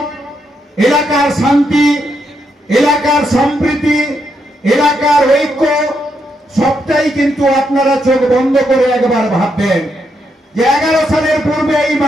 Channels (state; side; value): normal; both; correlation 0.79